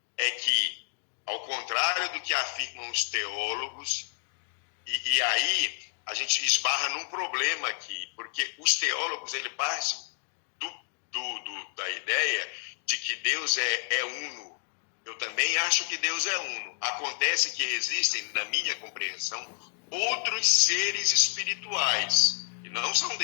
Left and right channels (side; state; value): right; silent; digital silence